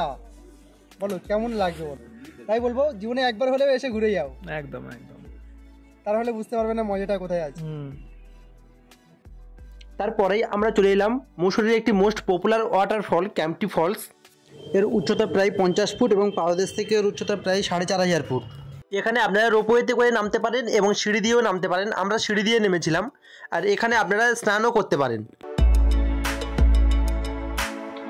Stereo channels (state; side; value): identical; both; correlation 1.00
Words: বলো কেমন লাগবে বলো। তাই বলবো, জীবনে একবার হলেও এসে ঘুরে যাও। একদম একদম, তাহলে বুঝতে পারবে না মজাটা কোথায় আছে। তারপরেই আমরা চলে এলাম মুসৌরির একটি মোস্ট পপুলার ওয়াটারফল ক্যাম্পটি ফলস। এর উচ্চতা প্রায় 50 ফুট এবং পাদদেশ থেকে এর উচ্চতা প্রায় 4500 ফুট। এখানে আপনারা রোপওয়েতে করে নামতে পারেন এবং সিঁড়ি দিয়েও নামতে পারেন। আমরা সিঁড়ি দিয়ে নেমেছিলাম, আর এখানে আপনারা স্নানও করতে পারেন।